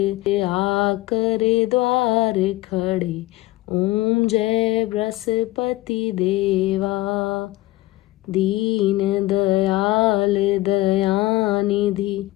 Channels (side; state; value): right; quieter; 18.5 dB